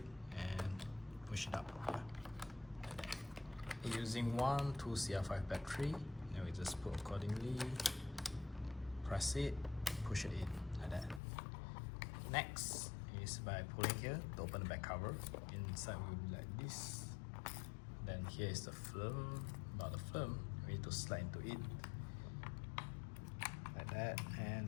and push it up. Yeah. Using 2 CR5 battery, then we just put accordingly, press it, push it in like that. Next is by pulling here to open the back cover. Inside will be like this. Then here is the film. About the film, we need to slide into it like that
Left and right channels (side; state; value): right; drops out; at 11.2 s